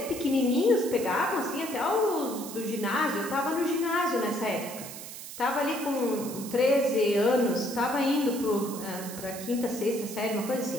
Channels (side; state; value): right; noise; hiss, 11 dB below the sound